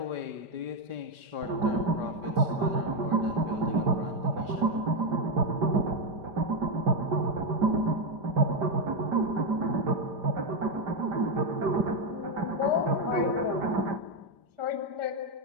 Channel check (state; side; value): late; left; 5.0 ms